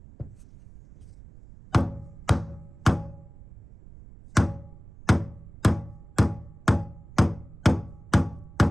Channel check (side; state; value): right; noise; rumble, 19 dB below the sound